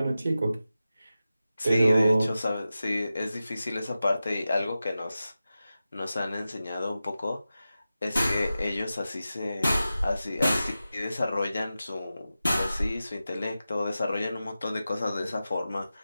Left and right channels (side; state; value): both; inverted; correlation -0.93